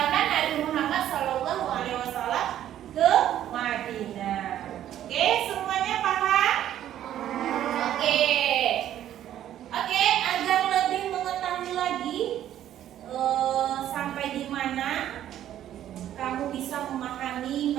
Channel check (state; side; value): quieter; left; 11.6 dB